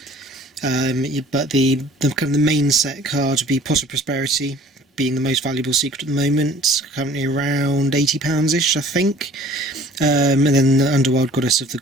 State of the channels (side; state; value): both; normal; correlation 0.51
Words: But the kind of the main set card would be Pot of Prosperity, being the most valuable secret at the moment, currently around £80-ish, I think. And then the Underworld Goddess of the